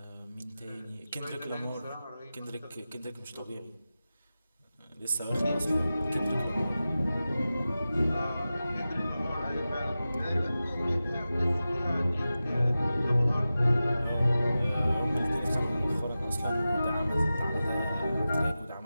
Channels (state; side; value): inverted; both; correlation -0.94